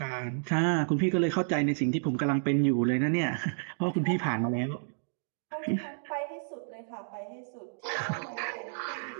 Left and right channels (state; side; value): silent; left; digital silence